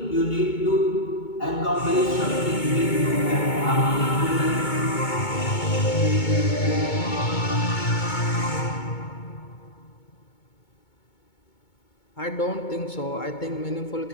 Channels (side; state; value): right; late; 2.2 ms